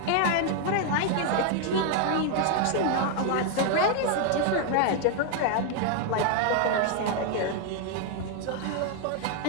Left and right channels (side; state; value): both; different; correlation 0.00